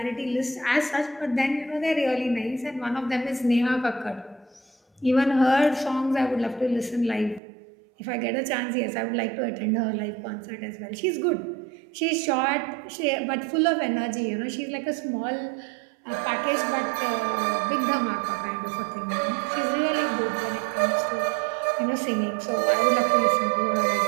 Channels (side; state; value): left; drops out; at 7.4 s